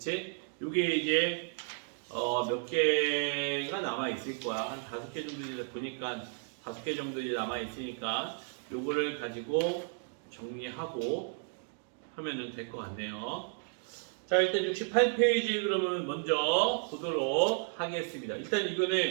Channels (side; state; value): left; silent; 56 dB below the other